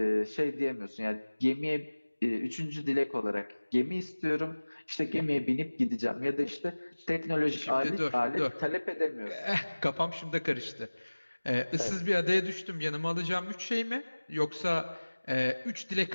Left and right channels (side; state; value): both; inverted; correlation -1.00